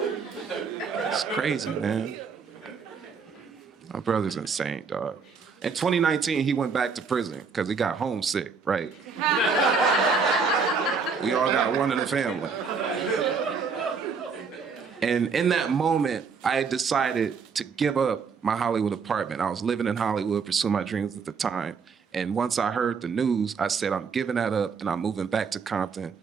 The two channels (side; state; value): left; quieter; 5.4 dB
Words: It's crazy, man. My brother's insane, dog. In 2019, he went back to prison because he got homesick, right? We all got one in the family. And in that moment, I had decided to give up my Hollywood apartment. I was living in Hollywood, pursuing my dreams at the time. And once I heard the news, I said, I'm giving that up and I'm moving back to Compton